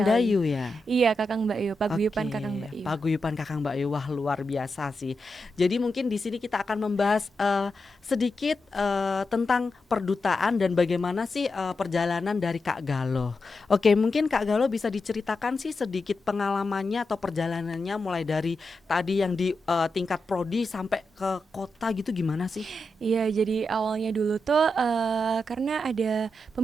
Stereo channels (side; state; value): both; normal; correlation 0.88